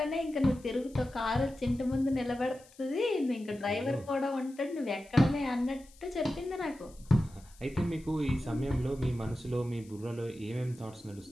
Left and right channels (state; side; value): noise; left; hiss, 25 dB below the sound